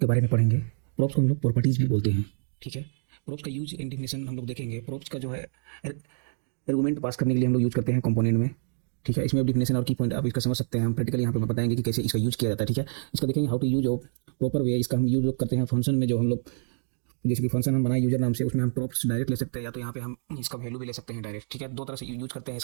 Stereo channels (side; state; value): left; silent; 60 dB below the other